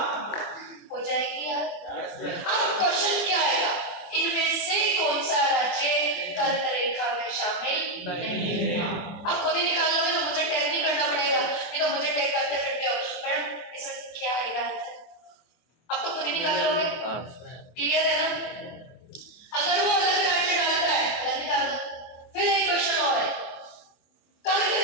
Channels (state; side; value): late; right; 24 ms